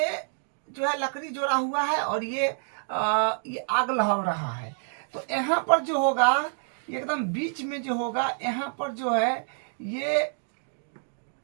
जो है लकड़ी जोड़ा हुआ है और ये आग लहर रहा है। तो यहाँ पर जो होगा एकदम बीच में जो होगा यहाँ पर जो है ये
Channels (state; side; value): silent; left; digital silence